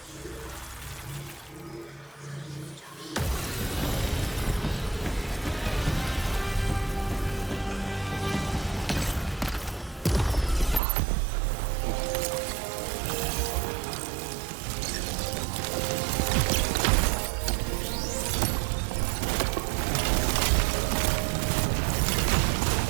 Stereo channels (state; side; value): drops out; left; at 10.8 s